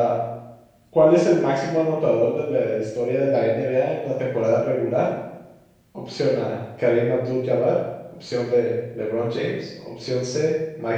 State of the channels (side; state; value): both; identical; correlation 1.00